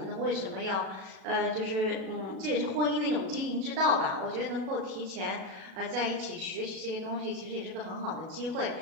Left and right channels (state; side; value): late; left; 37 ms